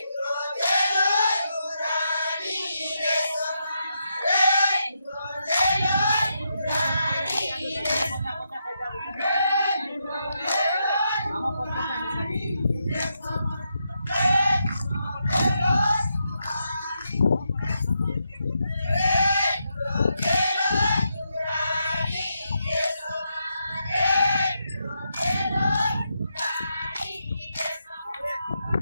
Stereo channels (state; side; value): inverted; both; correlation -0.83